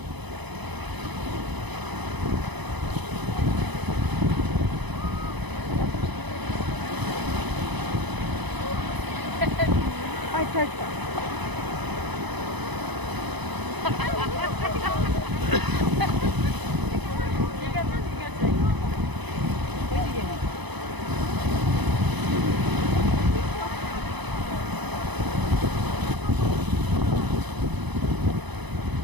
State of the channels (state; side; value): late; left; 1.0 ms